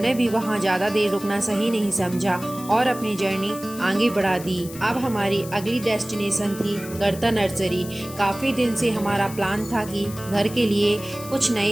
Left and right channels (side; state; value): left; noise; hiss, 15 dB below the sound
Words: भी वहाँ ज़्यादा देर रुकना सही नहीं समझा और अपनी जर्नी आगे बढ़ा दी। अब हमारी अगली डेस्टिनेशन थी गर्ता नर्सरी। काफ़ी दिन से हमारा प्लान था कि घर के लिए कुछ